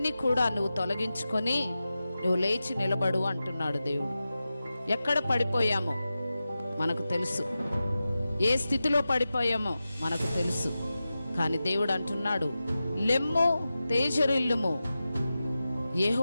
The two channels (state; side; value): inverted; both; correlation -0.93